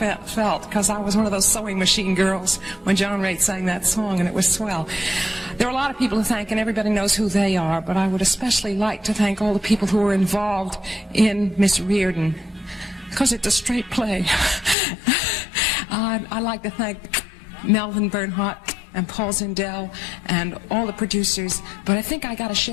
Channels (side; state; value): right; drops out; at 14.8 s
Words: because I was one of those sewing machine girls when John Raitt sang that song, and it was swell. There are a lot of people to thank, and everybody knows who they are, but I would especially like to thank all the people who were involved in Miss Reardon, because it's a straight play. I'd like to thank Melvin Bernhardt and Paul Zindel and all the producers, but I think I got to